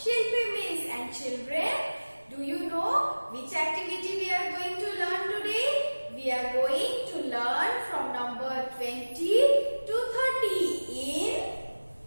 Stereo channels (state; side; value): inverted; both; correlation -1.00